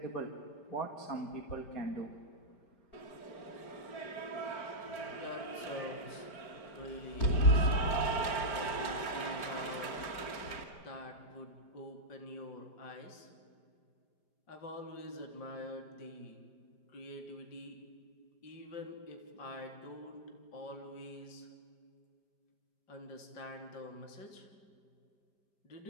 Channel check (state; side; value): late; right; 5.0 ms